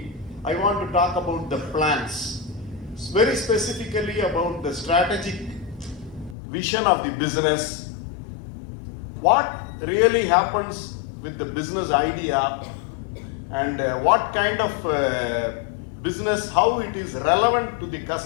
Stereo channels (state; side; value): drops out; right; at 6.4 s